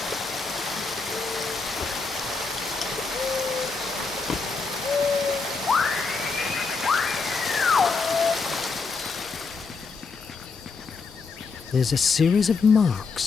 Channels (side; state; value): right; quieter; 4.6 dB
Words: There's a series of